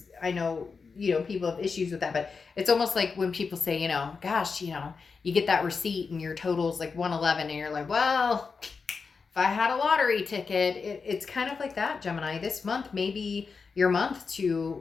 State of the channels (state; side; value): quieter; right; 5.0 dB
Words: I know people have issues with that, but it's almost like when people say, gosh, you get that receipt and your total's like 111 and you're like, well, if I had a lottery ticket, it's kind of like that, Gemini. This month may be your month to